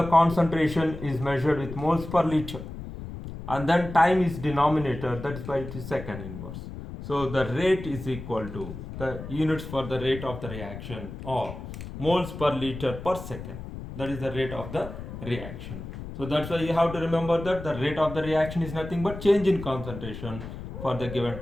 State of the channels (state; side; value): noise; left; rumble, 10 dB below the sound